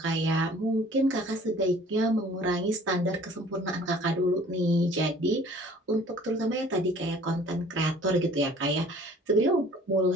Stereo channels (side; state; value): both; normal; correlation 0.52